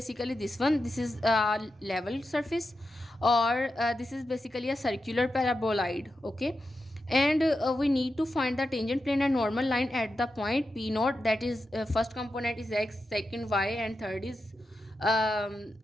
this one. This is level surface, or this is basically a circular paraboloid. Okay, and we need to find the tangent plane and normal line at the point P naught, that is first component is x, second y, and third is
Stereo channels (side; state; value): both; normal; correlation 0.89